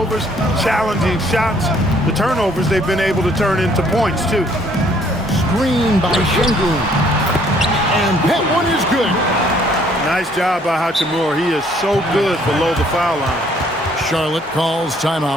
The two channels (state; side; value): normal; both; correlation 0.63